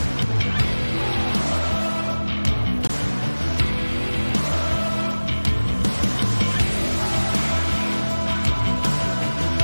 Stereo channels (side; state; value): both; inverted; correlation -1.00